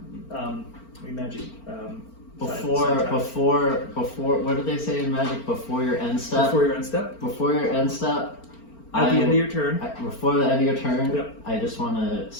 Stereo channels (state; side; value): late; right; 4.4 ms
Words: Before, what did they say in Magic? Before your end step? Before your end step? Before your end step. At the end of your turn. Before the end of your turn, Yep. I just want to